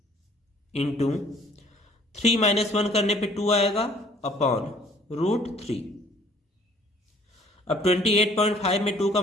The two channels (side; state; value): both; normal; correlation 0.57